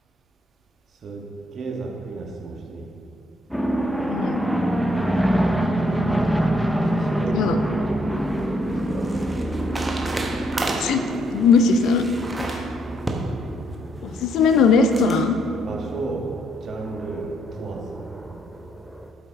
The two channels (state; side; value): normal; both; correlation 0.71